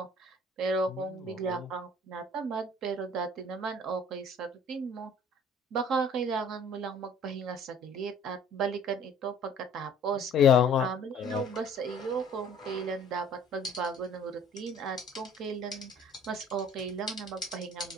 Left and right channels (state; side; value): normal; both; correlation 0.52